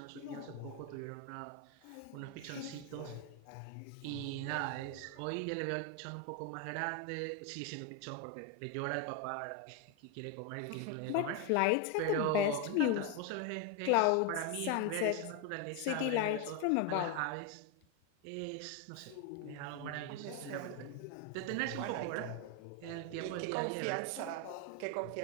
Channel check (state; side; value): different; both; correlation 0.01